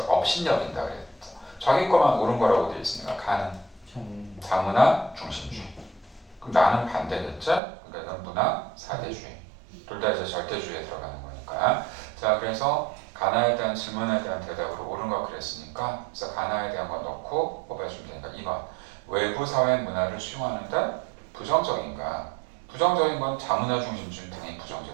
업신여긴다 그랬어. 자기 거만 옳은 거라고 되어 있으니까 가는 자문화 중심주의. 그럼 나는 반대겠죠? 그러니까 이건 문화 사대주의. 둘 다 이제 절대주의에 들어가는 거니까. 자, 그래서 가나에 대한 질문에 대한 대답으로 옳은 거 그랬으니까 그래서 가나에 대한 거 넣고 뽑아주면 되니까 2번 외부 사회 문화를 수용하는데 부정적인가? 부정적인 건 자문화 중심주의는 당연히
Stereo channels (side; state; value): left; drops out; at 7.6 s